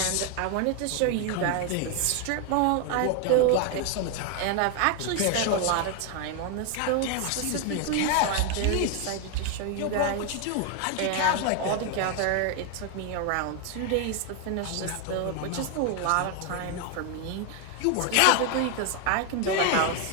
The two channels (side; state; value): both; different; correlation 0.01